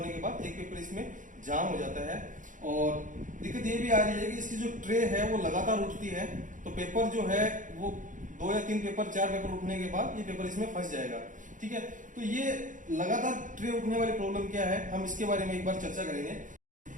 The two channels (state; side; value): late; left; 0.37 ms